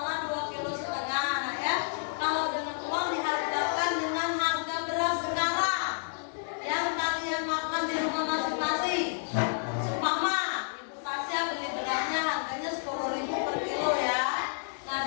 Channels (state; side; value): silent; right; digital silence